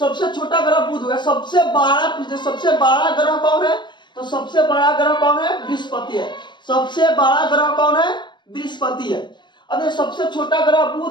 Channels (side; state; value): right; late; 0.22 ms